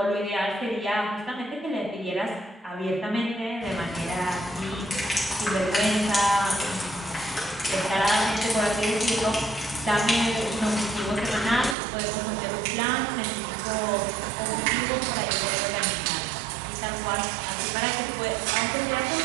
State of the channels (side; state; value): left; drops out; at 11.8 s